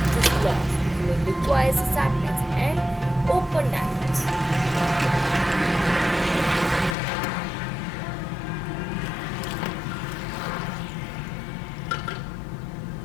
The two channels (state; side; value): drops out; right; at 7.0 s